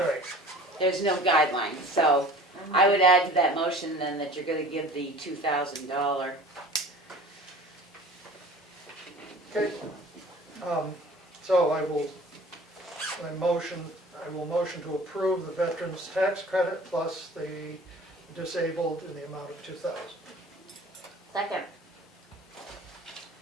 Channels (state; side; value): normal; both; correlation 0.45